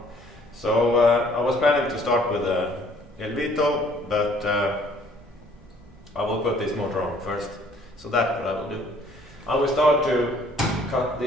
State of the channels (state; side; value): normal; both; correlation 0.59